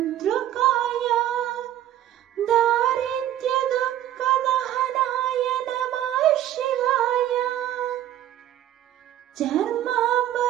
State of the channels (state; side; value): quieter; left; 12.3 dB